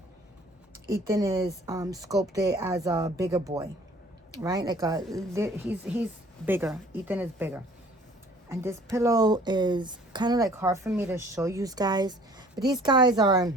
sculpted as a bigger boy, right? Like he's bigger. Ethan is bigger. And this pillow is kind of like hard for me to show you guys. But these guys are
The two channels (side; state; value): both; normal; correlation 0.53